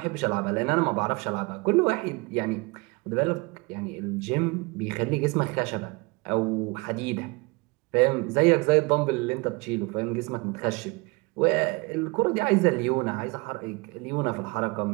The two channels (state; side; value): quieter; left; 26.6 dB